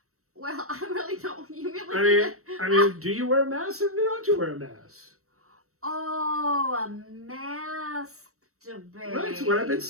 Well, I really don't. You really? I mean, do you wear a mask or don't you wear a mask? Oh, a masturbate. Right, that's what I've been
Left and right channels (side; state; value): left; late; 0.64 ms